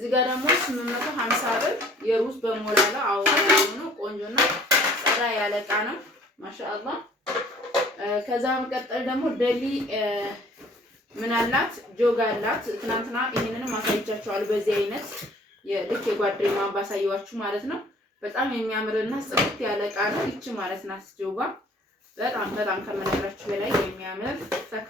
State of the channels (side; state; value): both; normal; correlation 0.55